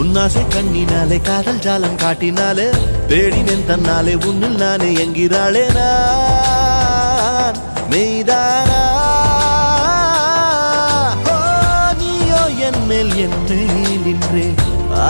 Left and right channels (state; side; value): inverted; both; correlation -1.00